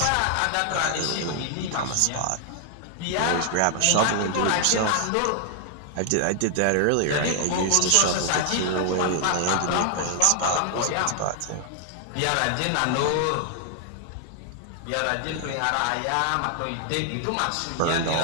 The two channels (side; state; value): both; different; correlation 0.00